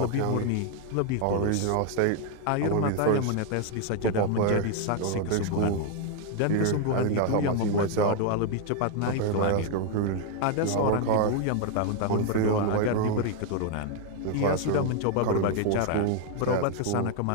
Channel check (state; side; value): different; both; correlation 0.00